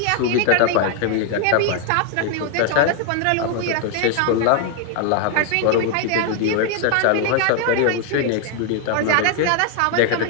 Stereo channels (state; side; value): different; both; correlation 0.00